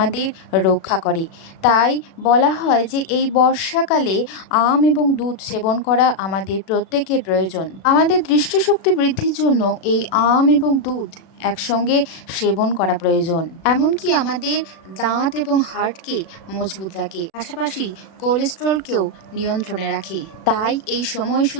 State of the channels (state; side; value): late; right; 36 ms